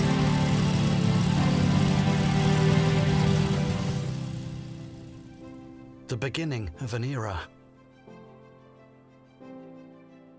The beginning of an era.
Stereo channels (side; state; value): both; identical; correlation 1.00